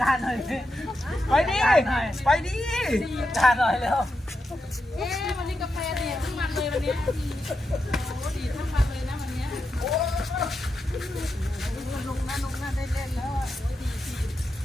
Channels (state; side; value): normal; both; correlation 0.87